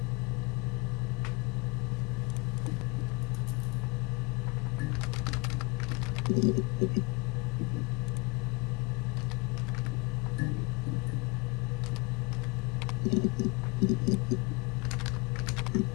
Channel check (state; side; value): quieter; right; 25.1 dB